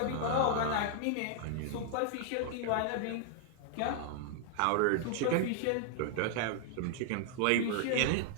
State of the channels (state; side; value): different; both; correlation 0.00